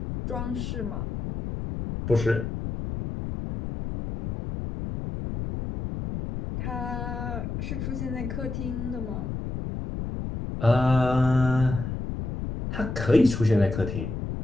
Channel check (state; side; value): noise; left; rumble, 5 dB below the sound